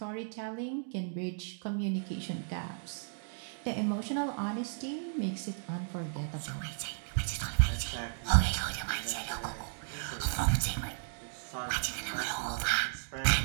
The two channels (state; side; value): silent; left; digital silence